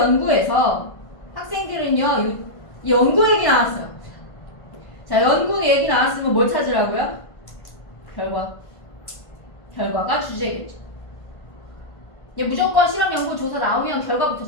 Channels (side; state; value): right; late; 1.5 ms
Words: 학생들은요, 연구 얘기 나왔어요. 자, 연구 얘기 나왔으면 뭘 찾으라고요? 결과가 주제겠죠. 무조건 실험 연구 조사 나오면 결과부터